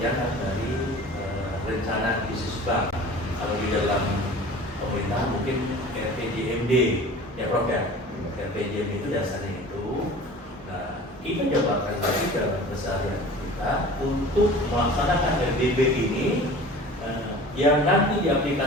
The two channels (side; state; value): both; normal; correlation 0.41